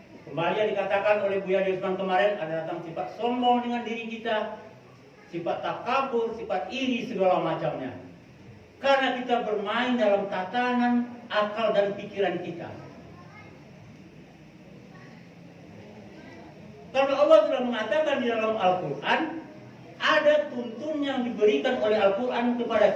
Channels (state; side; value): identical; both; correlation 1.00